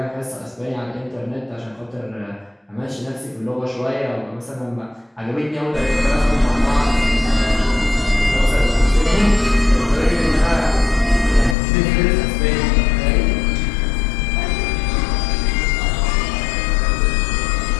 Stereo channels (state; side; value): drops out; right; at 11.6 s